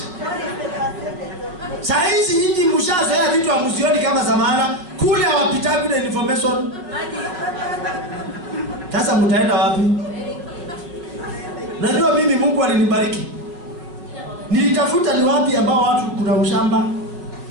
Saizi nyinyi mshazoea vitu hamuzioni kama zamana, kule hawapitagu na information. Sasa mtaenda wapi? Najua mimi Mungu alinibariki. Nilitafuta ni wapi ambao watu kuna ushamba.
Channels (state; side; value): late; left; 5.5 ms